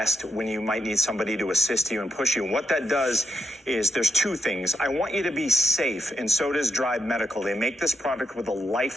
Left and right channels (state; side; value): normal; both; correlation 0.82